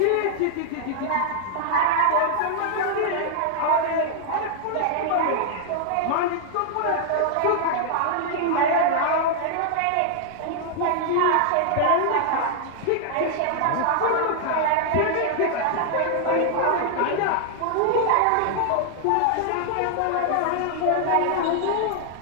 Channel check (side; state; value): both; different; correlation -0.01